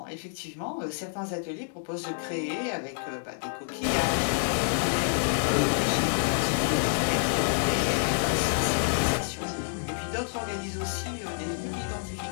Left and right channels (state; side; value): silent; right; digital silence